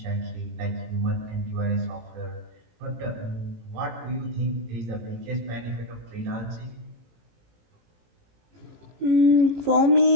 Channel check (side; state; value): left; late; 18 ms